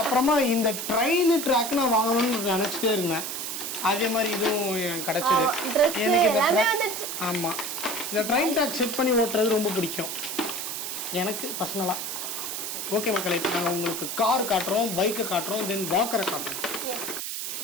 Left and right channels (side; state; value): right; noise; hiss, 4 dB below the sound